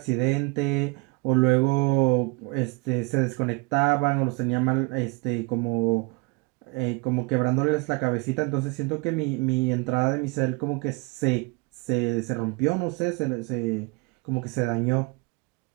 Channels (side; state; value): left; quieter; 28.0 dB